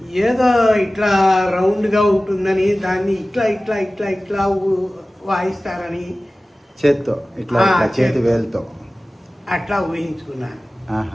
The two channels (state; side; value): normal; both; correlation 0.97